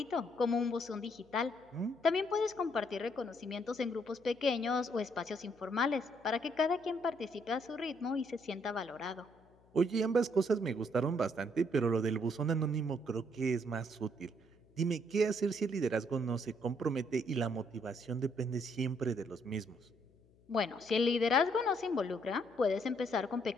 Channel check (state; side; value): noise; left; hum, 30 dB below the sound